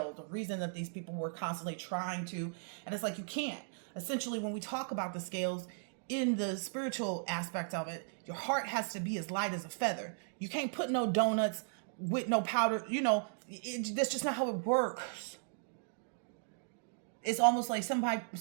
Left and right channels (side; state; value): left; silent; digital silence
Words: the reason that these people were constantly trying to, and it's like, you can't. Essentially, when we talk about the scales in the spiritual aspect of it, your heart has to be as light as a feather. You can't put no donuts with no powder, you know, that's just not how it works. It's almost like